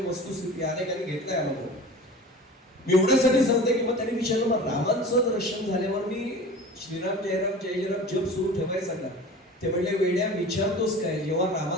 वस्तुस्थिती अनेकांनी घेतलाय अनुभव. मी एवढ्यासाठी सांगते की मग त्यांनी विचारलं मग रामांचं दर्शन झाल्यावर मी श्रीराम जयराम जय जयराम जप सुरू ठेवायचा का? ते म्हणले वेड्या विचारतोस काय, जेव्हा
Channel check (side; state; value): both; normal; correlation 0.38